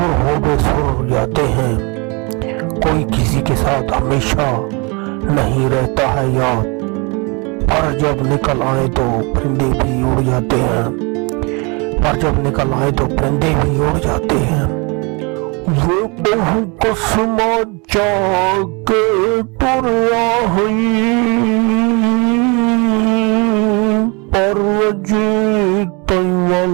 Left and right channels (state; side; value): quieter; left; 30.0 dB